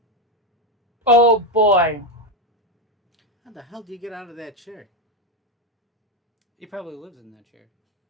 Oh boy. How the hell do you get out of that chair? He probably lives in that chair.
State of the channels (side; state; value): both; normal; correlation 0.07